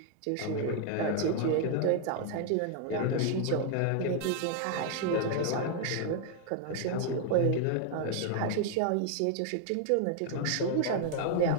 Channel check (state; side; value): different; both; correlation 0.00